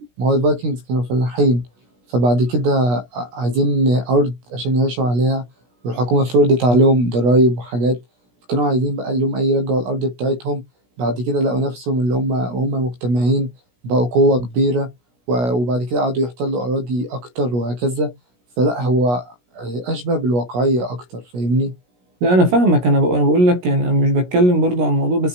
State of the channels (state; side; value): late; left; 17 ms